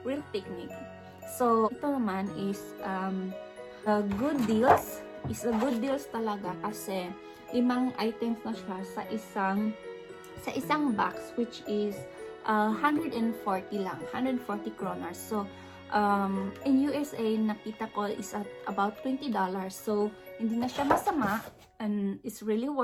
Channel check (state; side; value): identical; both; correlation 1.00